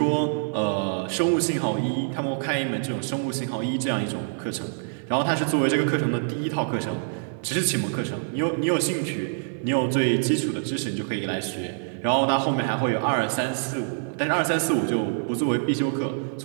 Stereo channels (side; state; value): left; silent; 55 dB below the other